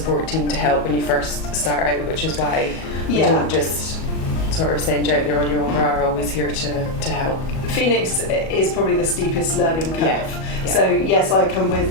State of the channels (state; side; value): late; right; 37 ms